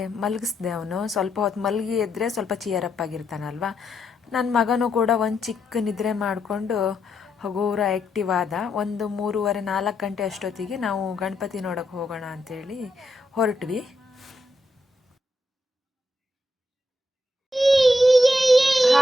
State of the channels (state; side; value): normal; both; correlation 0.80